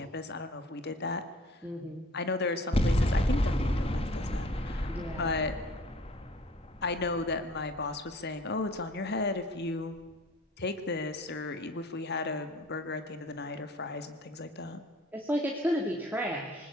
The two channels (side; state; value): both; normal; correlation 0.49